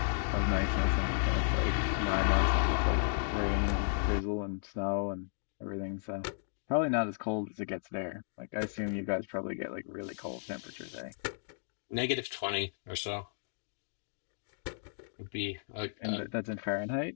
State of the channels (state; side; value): silent; right; digital silence